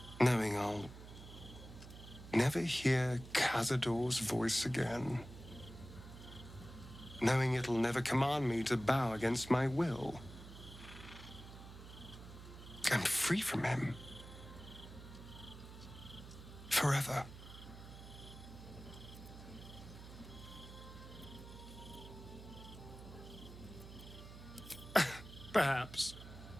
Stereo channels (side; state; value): right; noise; hum, 14 dB below the sound